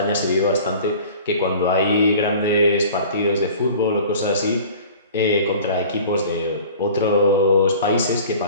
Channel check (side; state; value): both; inverted; correlation -0.44